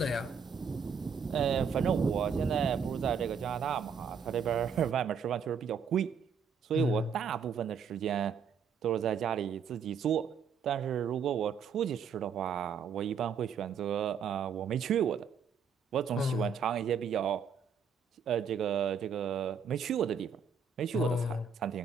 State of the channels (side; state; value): left; quieter; 6.3 dB